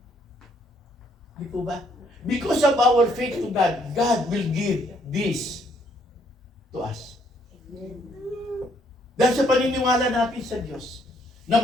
Di po ba? Because of our faith to God, God will give this to us. Dahil sa paniniwala natin sa Diyos, na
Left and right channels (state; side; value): normal; both; correlation 0.69